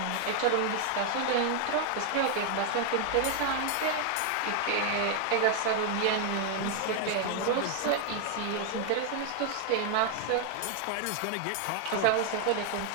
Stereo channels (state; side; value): different; both; correlation 0.00